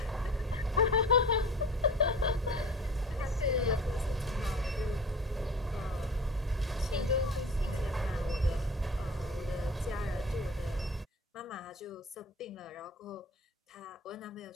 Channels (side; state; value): both; normal; correlation 0.39